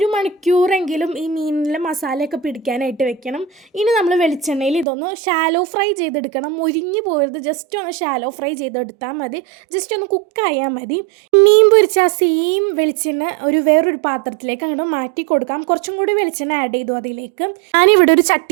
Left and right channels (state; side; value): drops out; left; at 4.9 s